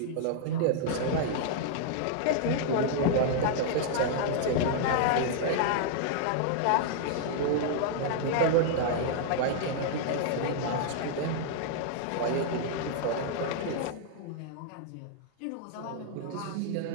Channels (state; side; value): different; both; correlation -0.01